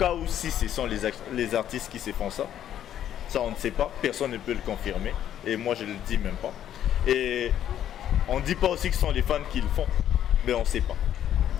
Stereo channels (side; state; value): right; quieter; 10.7 dB